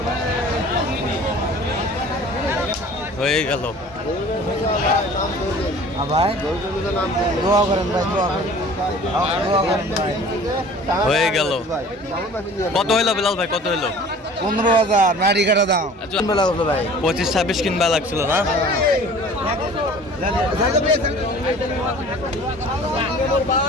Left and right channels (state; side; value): normal; both; correlation 0.46